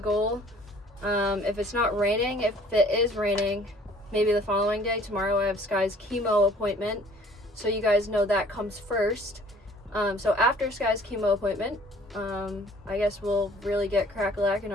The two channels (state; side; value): normal; both; correlation 0.54